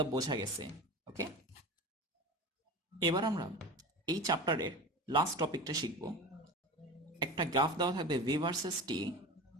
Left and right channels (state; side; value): normal; both; correlation 0.30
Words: বোঝা গেছে, ওকে। এবার আমরা এই চ্যাপ্টারের লাস্ট টপিকটা শিখব। একটা গ্রাফ দেওয়া থাকবে ভি ভার্সেস টি,